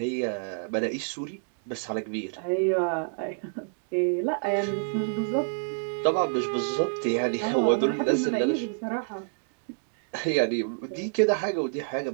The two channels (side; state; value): left; silent; digital silence